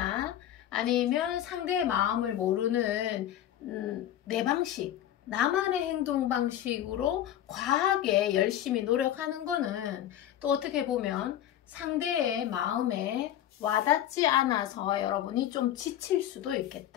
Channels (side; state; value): right; quieter; 11.7 dB